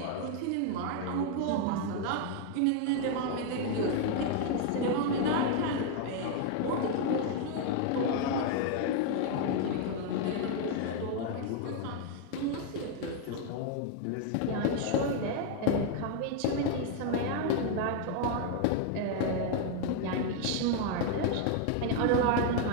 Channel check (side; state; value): both; different; correlation 0.00